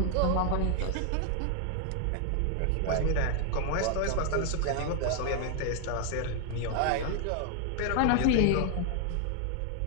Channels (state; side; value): different; both; correlation 0.00